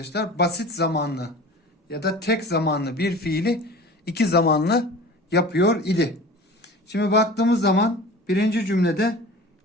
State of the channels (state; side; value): normal; both; correlation 0.39